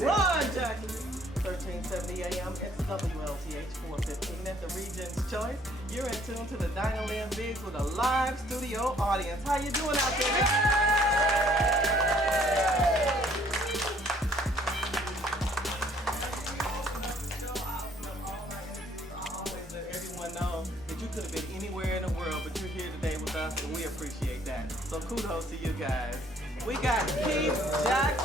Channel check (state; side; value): normal; both; correlation 0.61